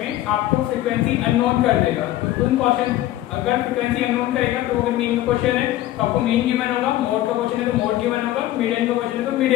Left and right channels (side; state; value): right; quieter; 14.6 dB